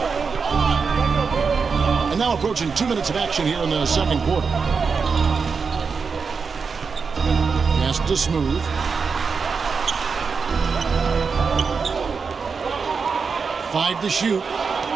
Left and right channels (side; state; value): left; quieter; 5.3 dB